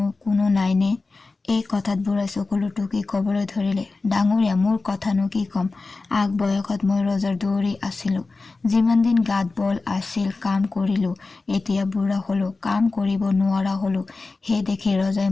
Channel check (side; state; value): right; quieter; 3.7 dB